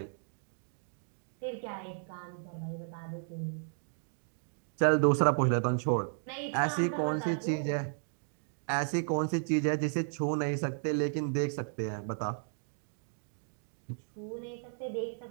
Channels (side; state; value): left; silent; digital silence